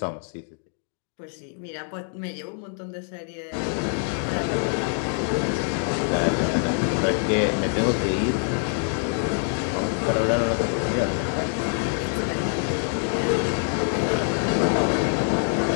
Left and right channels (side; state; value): right; silent; 56 dB below the other